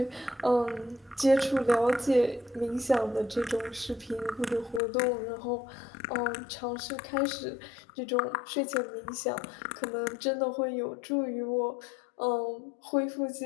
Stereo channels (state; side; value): drops out; right; at 4.8 s